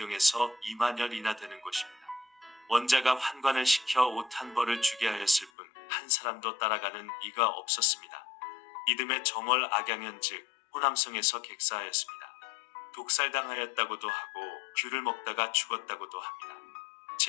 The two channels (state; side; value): drops out; right; at 5.5 s